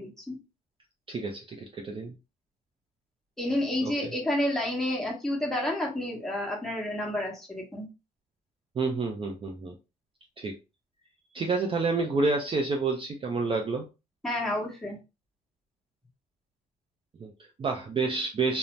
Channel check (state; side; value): normal; both; correlation 0.63